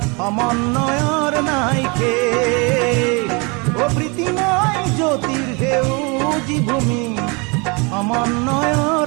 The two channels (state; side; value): quieter; left; 30.1 dB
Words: সমন্বয়ৰ নাইকে ও প্রীতিময় জ্যোতির সেউজী ভূমি